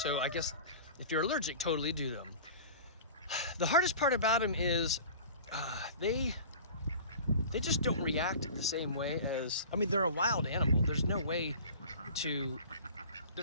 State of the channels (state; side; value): inverted; both; correlation -0.40